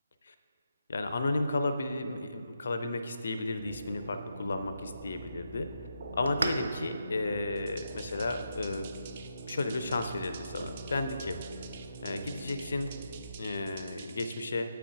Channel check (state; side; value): inverted; both; correlation -0.84